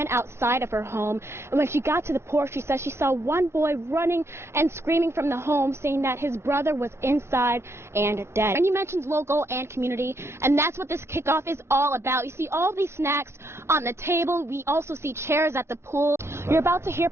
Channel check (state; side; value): late; left; 0.13 ms